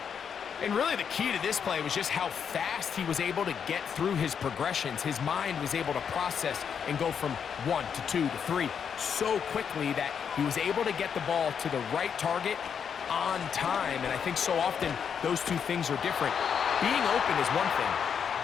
And really the key to this play was just how fast he was able to get through his progressions. His mind was able to process and go from 1 to 2 to 3 so quickly that he was able to get the ball to the right target on time. And I think so often those two things are different. Being open is one thing.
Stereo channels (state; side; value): quieter; right; 7.3 dB